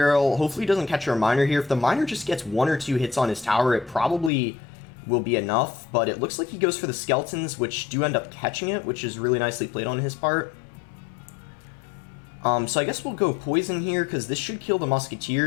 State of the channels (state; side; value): drops out; right; at 4.3 s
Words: Hopefully he doesn't catch our Miner here. If the Miner just gets 1 or 2 hits on his tower, it probably will be enough. But it looks like he goes for the Skeletons, which do end up catching it, which is really nicely played on his part. So I guess we'll go Poison here because this should kill the